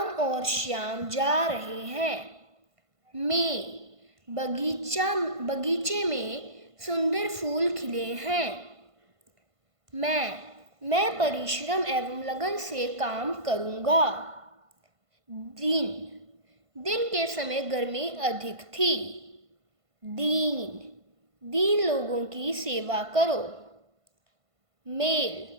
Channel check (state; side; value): late; left; 1.5 ms